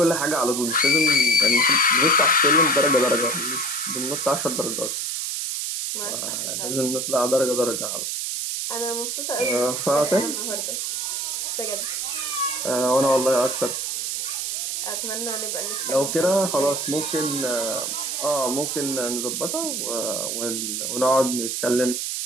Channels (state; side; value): noise; right; hiss, 2 dB below the sound